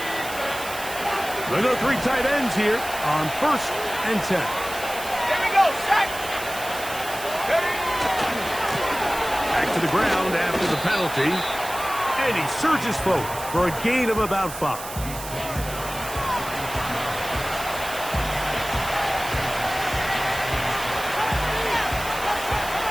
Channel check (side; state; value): right; noise; hiss, 11 dB below the sound